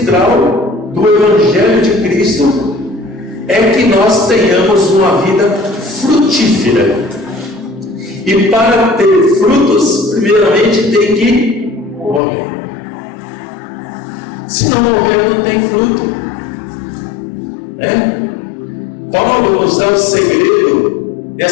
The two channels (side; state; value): right; drops out; at 12.2 s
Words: do Evangelho de Cristo é que nós tenhamos uma vida frutífera. E para ter frutos, primeiramente tem que morrer. Se não morrer, não tem fruto. Paulo nos dá o segredo